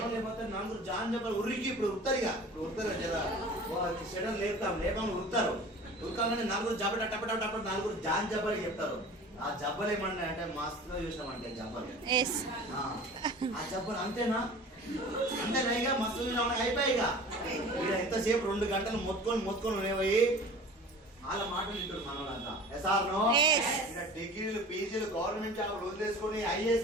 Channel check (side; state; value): both; normal; correlation 0.41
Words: లేకపోతే 4 జాన్ చెప్పాలి. ఉరికి ఇప్పుడు ఉరుతారుగా, ఇప్పుడు ఉరుతారు జర షెడల్ లేపం ఉరుతారు. ఉరకాలని 4 జబ్బ టప 4 జాన్ జబ్బలు చెప్తారు. ఆ జబ్బలు ఏమన్నా అంటే మస్తుగా చూసినామంటే జబ్బలు, ఆ జబ్బలు అంతేనా? అంతేనా? మస్తు అయిపోయిగా ఎంతసేపు 2 గంటలు మొత్తుకొని ఉండేవి. వాళ్ళ మాటలు వింటారు మన వాళ్ళంతా. ఎస్ఆర్నో డిగ్రీలు, పీజీలు, గవర్నమెంట్ జాబ్ వదిలేసుకొని